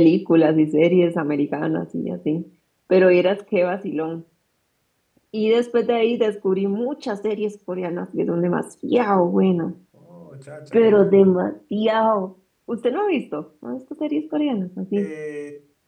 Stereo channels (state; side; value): identical; both; correlation 1.00